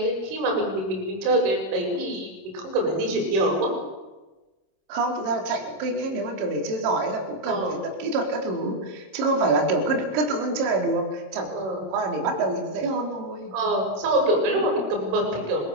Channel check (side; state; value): left; late; 26 ms